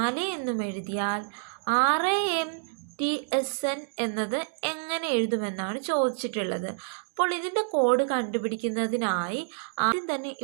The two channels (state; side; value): silent; left; digital silence